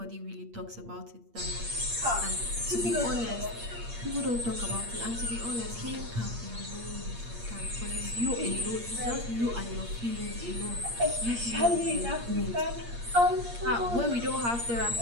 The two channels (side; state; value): left; late; 8.5 ms